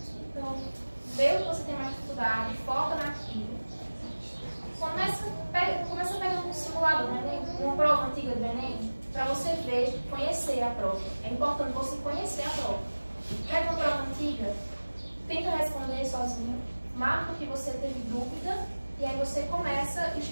Então, vê o que você tem mais dificuldade, foca naquilo. Começa pegando um simulador, uma prova antiga do Enem, para você ver, conhecer a prova. É importante você conhecer a prova. Pega uma prova antiga, tenta responder sozinho, marca o que você teve dúvida, e aí você começa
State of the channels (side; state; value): both; inverted; correlation -1.00